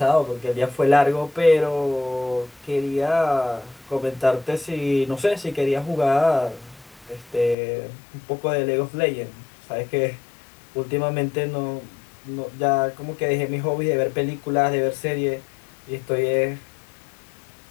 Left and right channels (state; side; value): drops out; right; at 7.6 s